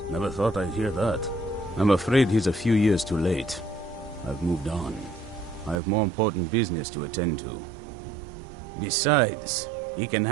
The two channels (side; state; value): left; drops out; at 5.8 s